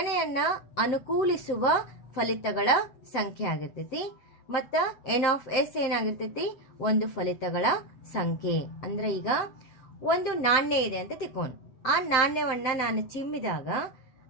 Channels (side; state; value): right; late; 7.9 ms